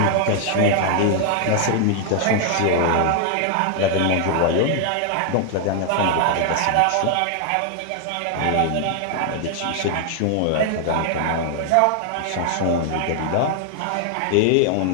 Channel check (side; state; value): both; different; correlation 0.00